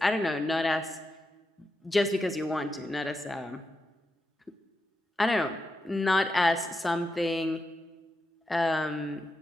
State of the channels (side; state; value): both; normal; correlation 0.87